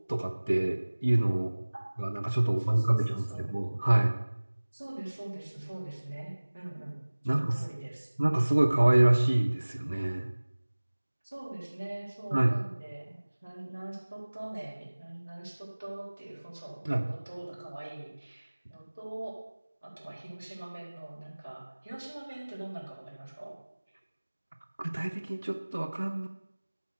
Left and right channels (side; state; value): both; inverted; correlation -1.00